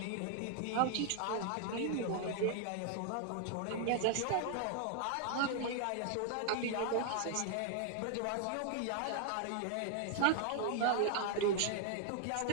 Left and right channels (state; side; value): different; both; correlation 0.00